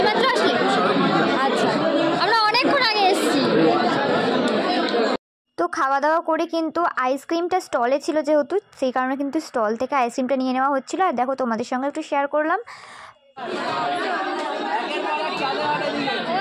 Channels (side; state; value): both; identical; correlation 1.00